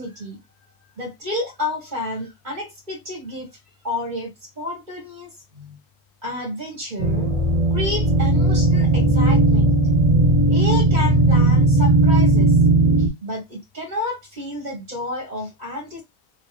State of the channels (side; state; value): both; normal; correlation 0.16